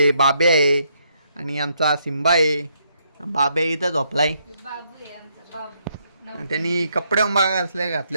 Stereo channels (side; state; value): both; inverted; correlation -0.74